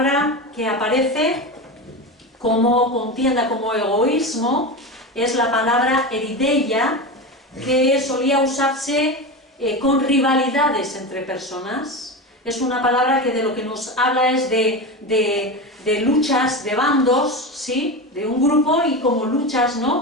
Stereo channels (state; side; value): normal; both; correlation 0.22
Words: que aparece como contienda, como egoísmo, es la palabra erideia, que solía usarse con rivalidades entre personas. Es una palabra que de lo que nos habla es de luchas, de bandos, ¿sí? De un grupo y como luchas,